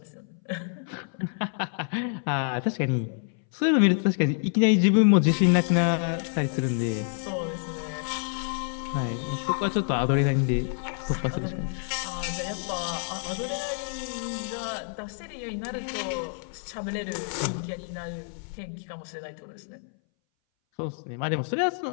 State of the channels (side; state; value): right; silent; 59 dB below the other